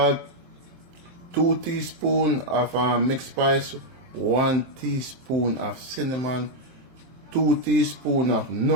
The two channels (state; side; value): late; left; 23 ms